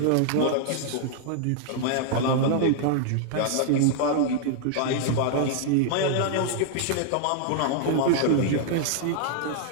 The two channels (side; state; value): both; different; correlation -0.01